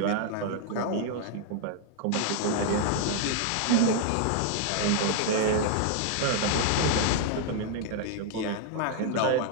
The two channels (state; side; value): different; both; correlation 0.00